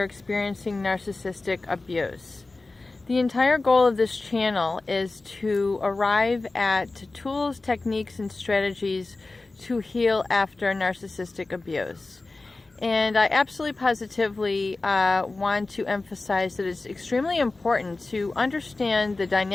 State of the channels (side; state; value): right; quieter; 3.3 dB